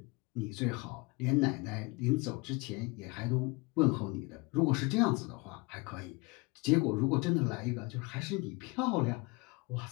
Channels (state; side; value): quieter; right; 26.8 dB